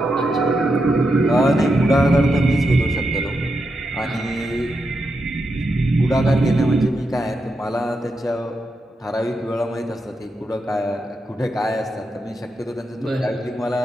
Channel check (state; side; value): normal; both; correlation 0.85